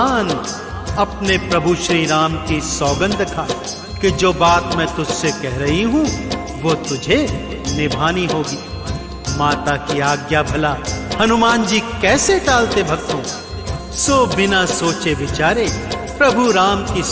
अपने प्रभु श्री राम की सौगंध खा कि जो बात मैं तुझसे कह रही हूं वो तुझे निभानी होगी। माता की आज्ञा भला हनुमान जी कैसे टालते भक्तों, सो बिना सोचे विचारे प्रभु राम की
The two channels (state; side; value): identical; both; correlation 1.00